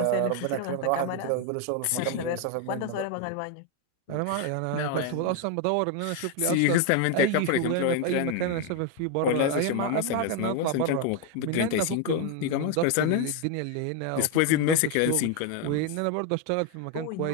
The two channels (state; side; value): different; both; correlation 0.01